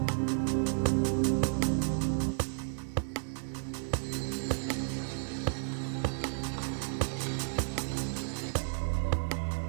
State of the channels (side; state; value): left; silent; digital silence